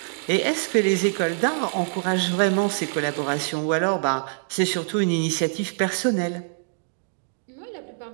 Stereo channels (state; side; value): silent; left; digital silence